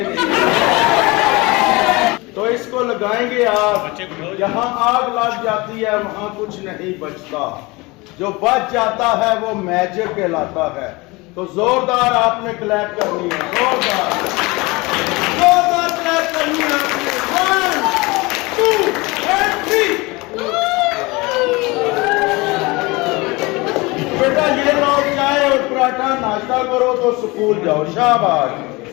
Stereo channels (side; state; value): right; quieter; 24.0 dB